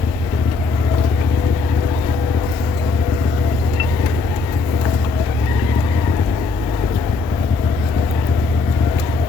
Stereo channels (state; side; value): quieter; right; 4.1 dB